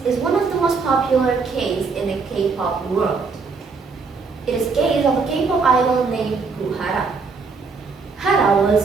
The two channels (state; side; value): quieter; left; 4.7 dB